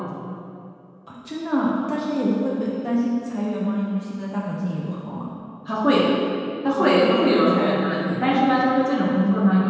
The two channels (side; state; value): both; identical; correlation 1.00